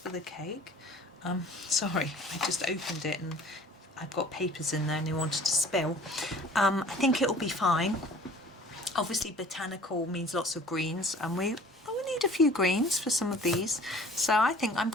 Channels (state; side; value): normal; both; correlation 0.49